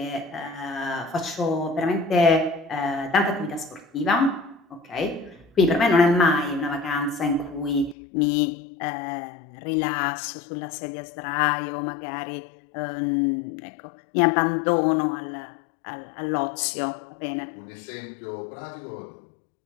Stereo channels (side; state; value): right; drops out; at 8.0 s